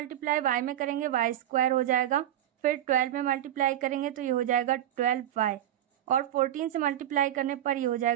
y में करेंगे y² हो जाएगा, फिर 12 में मल्टीप्लाई करेंगे तो ये हो जाएगा 12y, और 14 से मल्टीप्लाई करने पर ये हो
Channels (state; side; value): quieter; left; 12.0 dB